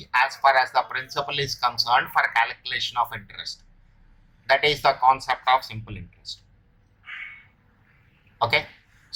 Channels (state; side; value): identical; both; correlation 1.00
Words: as far as the principal is concerned for calculation of interest. That is the concept of simple interest. Okay.